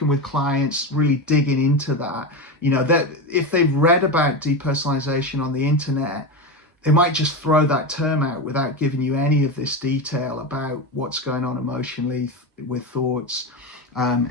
with clients, really digging into that, that if they've read about depersonalization on the internet, they might just throw that term out without giving you any of this detail about what's going on emotionally with thoughts,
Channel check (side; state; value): both; normal; correlation 0.18